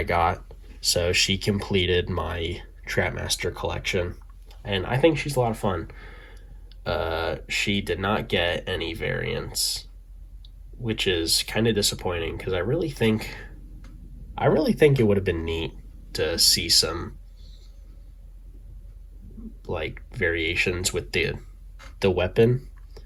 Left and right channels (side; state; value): both; identical; correlation 1.00